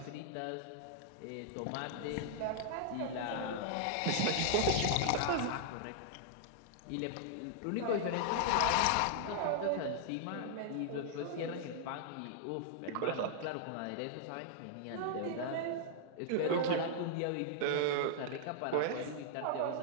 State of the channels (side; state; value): both; different; correlation -0.01